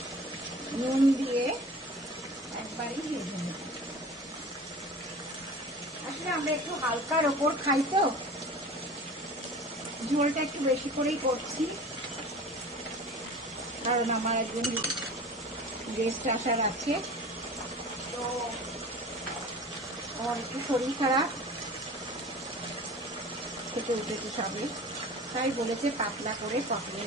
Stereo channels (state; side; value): normal; both; correlation 0.39